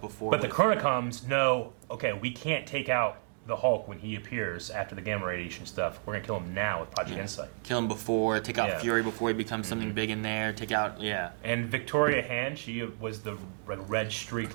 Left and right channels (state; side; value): silent; left; digital silence